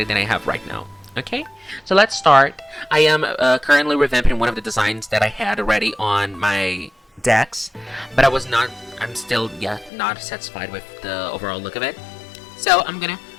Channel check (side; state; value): right; drops out; at 9.9 s